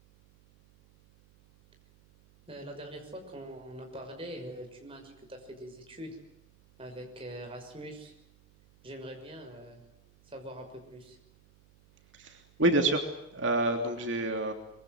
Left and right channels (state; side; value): noise; right; hum, 27 dB below the sound